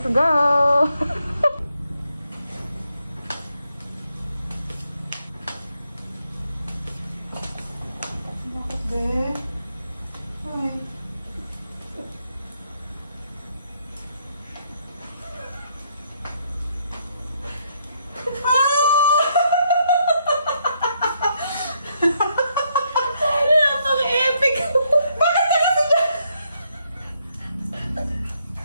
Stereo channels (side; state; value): both; inverted; correlation -0.74